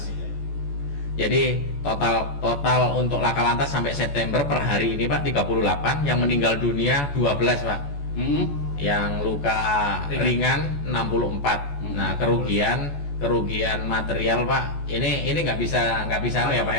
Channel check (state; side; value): late; right; 14 ms